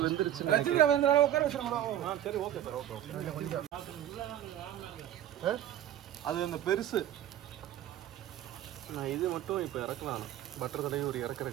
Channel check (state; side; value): quieter; left; 11.7 dB